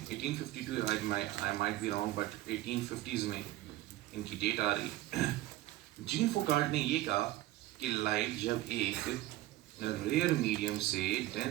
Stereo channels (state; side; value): quieter; left; 16.0 dB